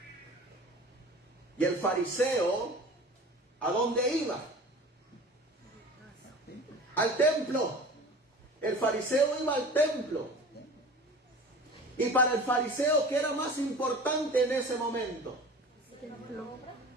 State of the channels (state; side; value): normal; both; correlation 0.39